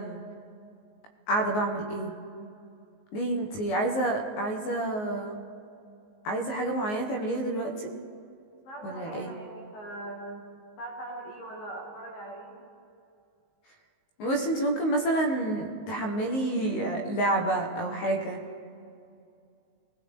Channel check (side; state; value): right; late; 19 ms